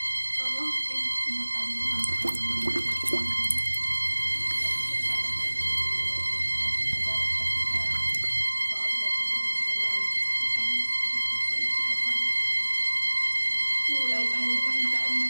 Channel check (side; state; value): both; inverted; correlation -1.00